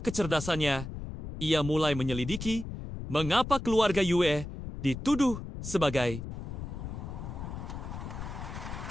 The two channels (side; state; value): left; noise; rumble, 8 dB below the sound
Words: kecerdasannya, ia mulai menyelidiki mengapa keluarga Yue dituduh sebagai